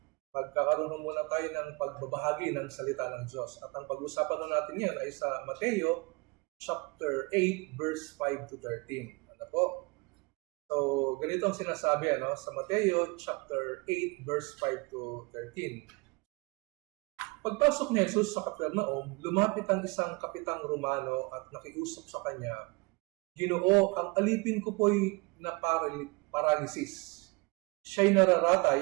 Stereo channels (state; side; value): quieter; left; 27.2 dB